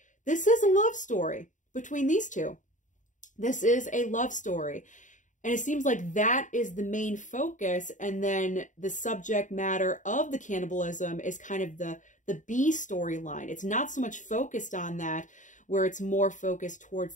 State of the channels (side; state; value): right; late; 0.36 ms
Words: this is a love story between these two. This is a love story. And it seems like that is the main focus. And then the subject matter of the cannibalism is kind of the B storyline. It's not so much focused on that, where it's more focused towards